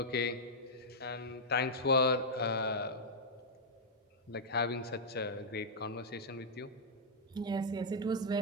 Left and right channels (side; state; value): both; normal; correlation -0.08